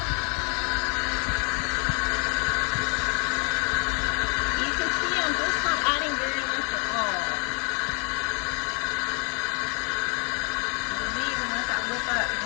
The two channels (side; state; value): right; quieter; 35.9 dB